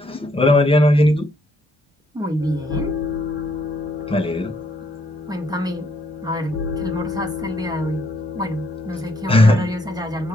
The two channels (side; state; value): both; normal; correlation 0.72